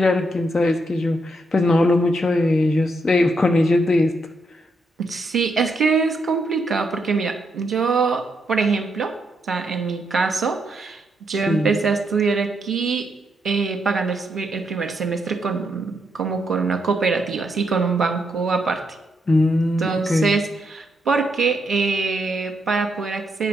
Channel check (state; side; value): normal; both; correlation 0.79